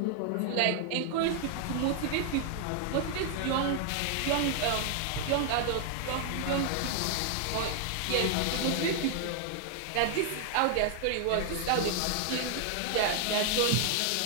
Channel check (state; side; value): different; both; correlation 0.00